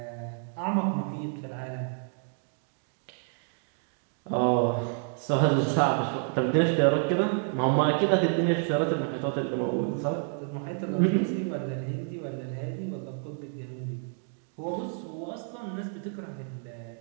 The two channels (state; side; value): silent; left; 57 dB below the other